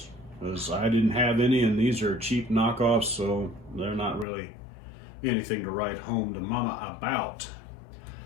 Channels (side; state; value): right; drops out; at 4.2 s